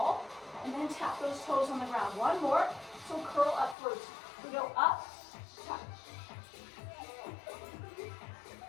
and then tap those toes on the ground. 1 more, so curl up first. We go up, tap,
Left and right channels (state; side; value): drops out; right; at 3.8 s